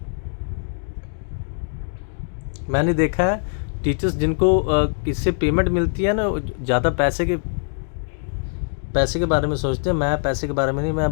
मैंने देखा है टीचर्स जिनको इससे पेमेंट मिलती है ना, ज़्यादा पैसे के बारे में सोचते हैं। मैं पैसे के बारे में नहीं,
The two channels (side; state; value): right; silent; 64 dB below the other